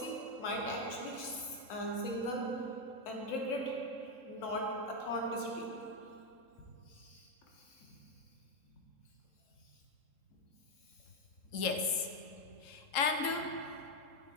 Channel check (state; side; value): late; right; 3.7 ms